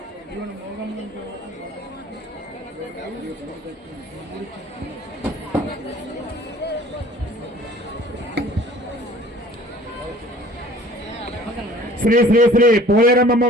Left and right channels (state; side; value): normal; both; correlation 0.50